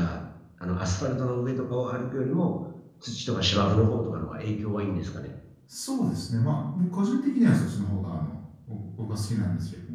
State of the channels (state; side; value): identical; both; correlation 1.00